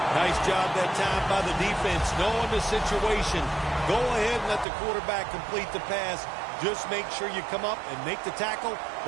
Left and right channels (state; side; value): drops out; left; at 4.7 s